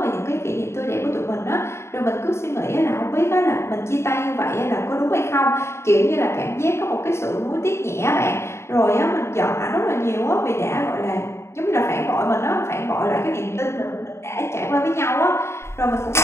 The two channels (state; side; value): late; right; 0.13 ms